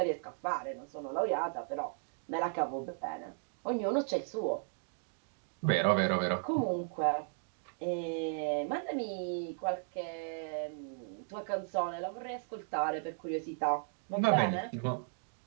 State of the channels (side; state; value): left; silent; digital silence